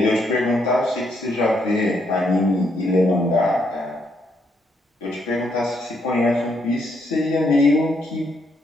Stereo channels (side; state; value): both; normal; correlation 0.75